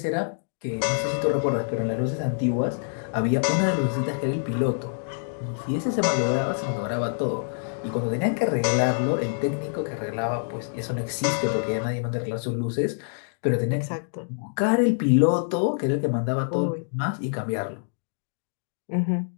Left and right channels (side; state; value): right; silent; digital silence